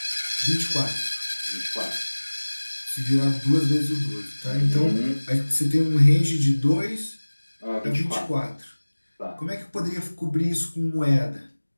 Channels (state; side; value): inverted; both; correlation -1.00